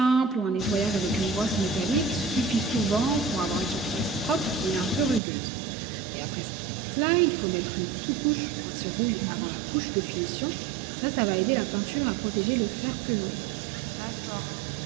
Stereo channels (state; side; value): drops out; left; at 5.2 s